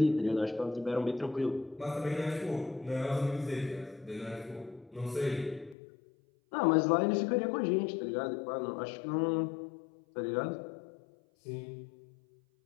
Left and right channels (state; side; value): drops out; right; at 5.8 s